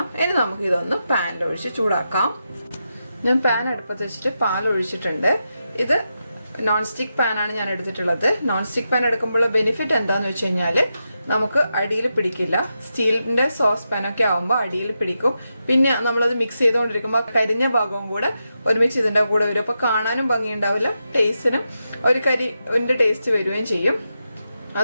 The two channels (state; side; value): inverted; both; correlation -0.87